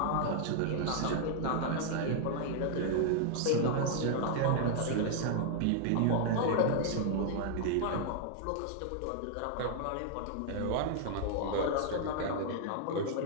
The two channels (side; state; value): both; different; correlation 0.00